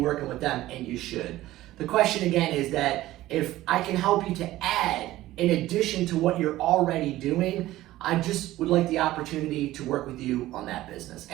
working with them, and you should. The question again is that if I can help you to add in addition to what you're already doing, I just would like the opportunity to work with you on that business.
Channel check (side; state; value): left; quieter; 15.9 dB